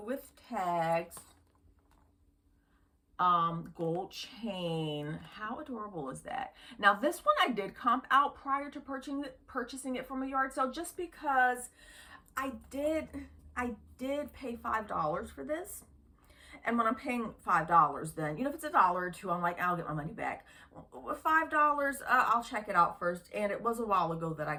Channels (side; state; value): both; identical; correlation 1.00